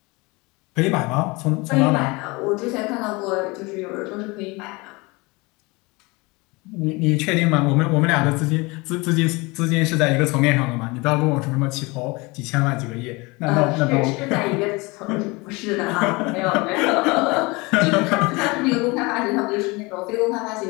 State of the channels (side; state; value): right; quieter; 25.2 dB